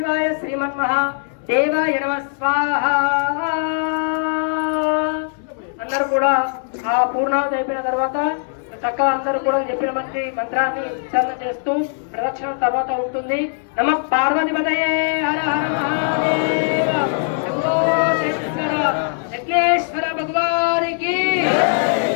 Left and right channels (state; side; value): silent; right; 66 dB below the other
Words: శ్రీమన్మహా దేవాయ నమః స్వాహా. అందరూ కూడా ఆ పూర్ణాహుతి అయిపోయిన తర్వాత చక్కగా అందరూ కూడా చెప్పిన మంత్రాన్ని ఉచ్చారణ చేస్తూ ప్రదక్షిణ తర్వాత ఉంటుంది. నమః పార్వతీపతయే హర హర మహాదేవ శంభో శంకర యజ్ఞేశ్వర భగవానికి.